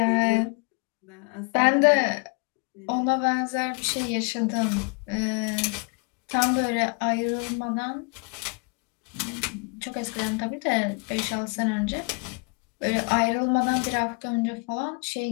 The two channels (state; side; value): quieter; right; 33.0 dB